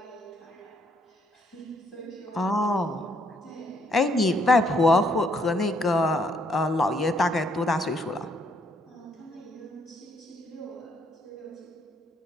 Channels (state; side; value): normal; both; correlation 0.70